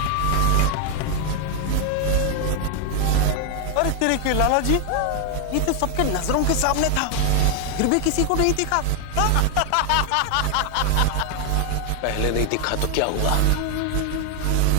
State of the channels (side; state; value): both; different; correlation 0.00